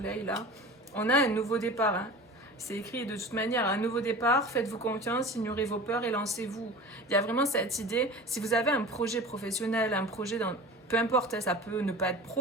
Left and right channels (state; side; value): normal; both; correlation 0.36